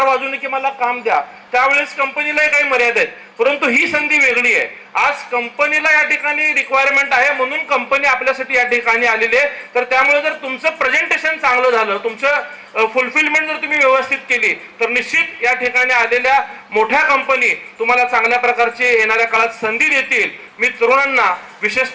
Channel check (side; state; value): both; identical; correlation 1.00